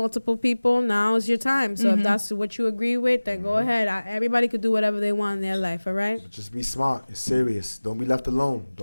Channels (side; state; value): both; inverted; correlation -1.00